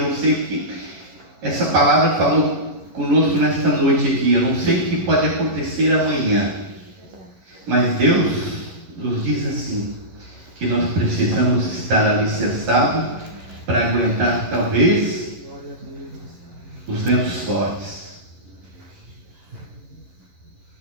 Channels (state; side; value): late; left; 11 ms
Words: sei o que essa palavra falou conosco nesta noite aqui. Eu não sei o que pode acontecer amanhã, mas Deus nos diz assim, que nós precisamos estar alicerçados para aguentar talvez os ventos fortes.